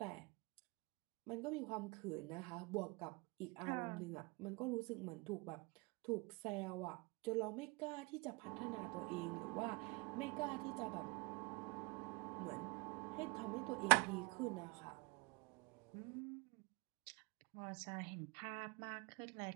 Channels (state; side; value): quieter; left; 28.0 dB